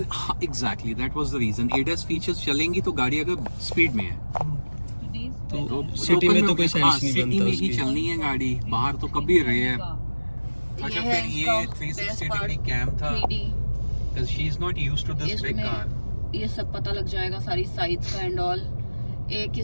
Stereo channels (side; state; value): both; inverted; correlation -1.00